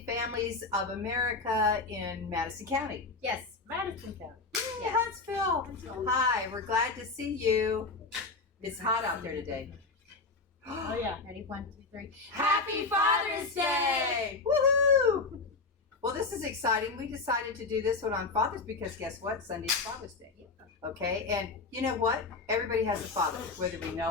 Families of America in Madison County. Yes, Madison County. Yay, Huntsville. Hi, we're glad to see you. It's hot out there today. Oh yeah. Ready? 1, 2, 3. Happy Father's Day! Woohoo! Well, this is exciting. We decided to do this one on Father's because guess what? Sunday's Father's Day. Okay, and you know what? Everybody has a father, whether we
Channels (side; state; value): right; quieter; 3.9 dB